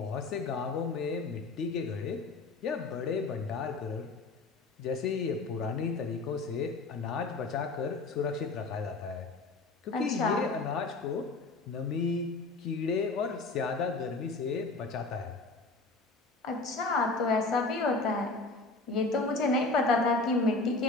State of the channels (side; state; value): right; quieter; 3.6 dB